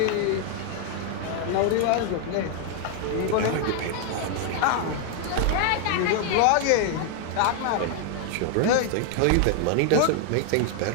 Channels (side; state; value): both; different; correlation 0.00